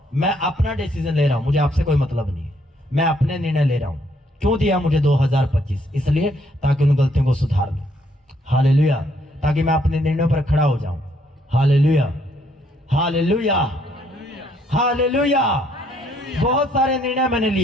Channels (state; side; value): normal; both; correlation 0.69